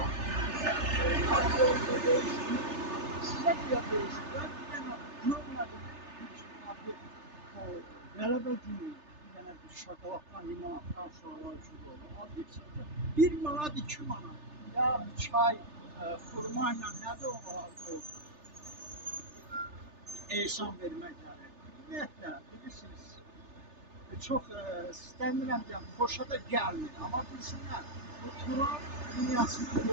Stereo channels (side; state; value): left; late; 3.3 ms